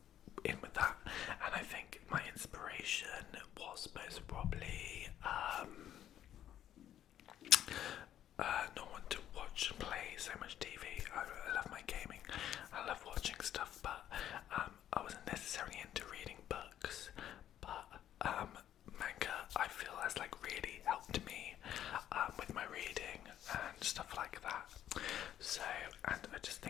in with that. And I think my inspiration was most probably not want to watch and play so much TV. I love my gaming. I love watching stuff, but I wasn't necessarily into reading books. But manga, I feel, has like really helped me with my reading and stuff like that. So, and I just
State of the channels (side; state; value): right; quieter; 11.1 dB